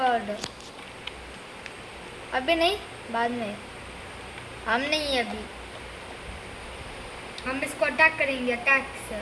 अभी नहीं, बाद में. हम नहीं अभी. हम इसको अटैक करेंगे, अटैक से.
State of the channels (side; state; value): both; identical; correlation 1.00